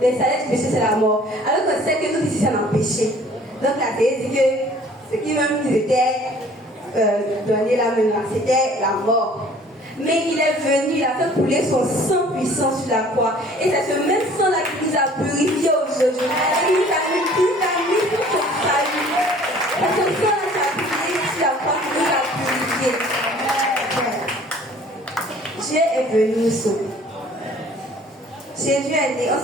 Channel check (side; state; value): both; normal; correlation 0.52